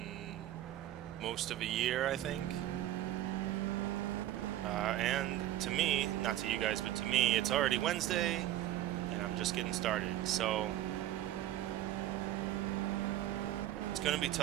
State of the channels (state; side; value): quieter; left; 13.4 dB